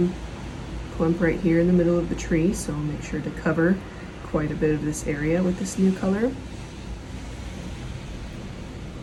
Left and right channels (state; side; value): identical; both; correlation 1.00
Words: clump right here in the middle of the tree, so I'll make sure to cover quite a bit of this area with this new color.